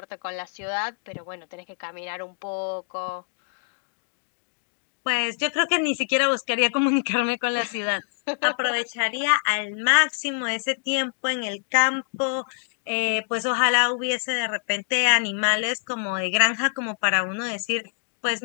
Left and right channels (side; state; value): right; silent; digital silence